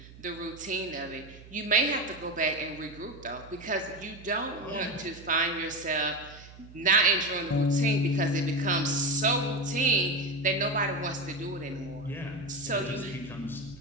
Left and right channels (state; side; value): noise; right; hum, 19 dB below the sound